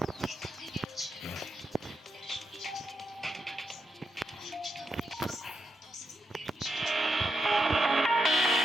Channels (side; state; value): both; normal; correlation 0.83